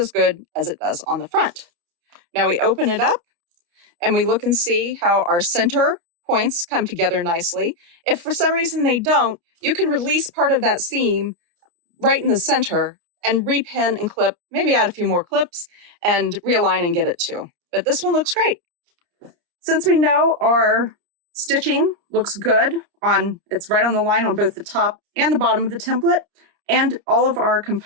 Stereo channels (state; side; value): late; left; 29 ms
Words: good as it does on the front. Now we open it up and we look and see how our center points come together nicely. If for some reason they don't, you can release part of that seam right in the center and repin and clip, maybe add a few more clips and realign and get it too. But this one looks great. Since we know our stitching looks good it's right on the line on both the top and the bottom of the template, and all of our